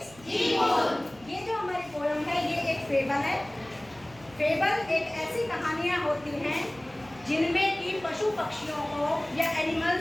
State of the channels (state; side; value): noise; right; hum, 23 dB below the sound